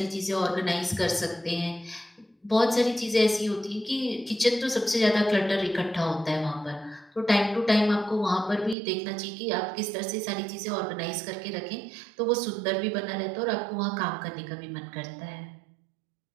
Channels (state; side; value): drops out; left; at 8.8 s